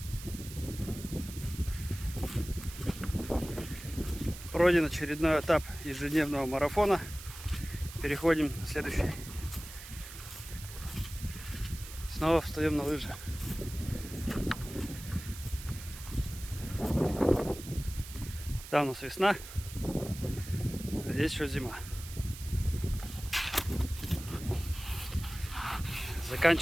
Пройден очередной этап ежедневного марафона. Переходим на следующий. Снова встаем на лыжи. Там у нас весна, а здесь еще зима.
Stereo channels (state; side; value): noise; right; hiss, 13 dB below the sound